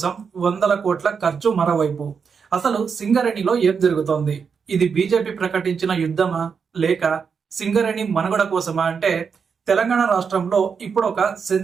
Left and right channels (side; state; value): left; quieter; 6.1 dB